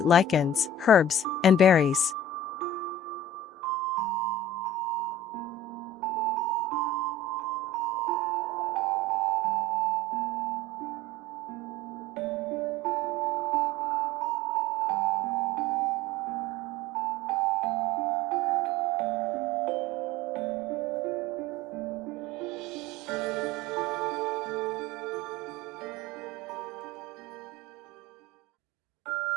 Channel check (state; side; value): normal; both; correlation 0.40